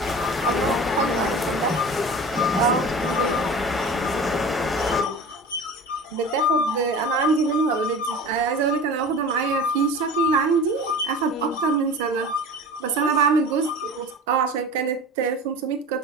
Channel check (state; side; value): normal; both; correlation 0.36